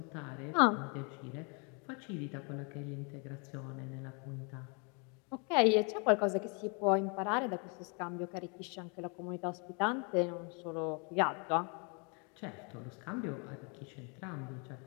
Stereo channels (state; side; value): quieter; right; 34.8 dB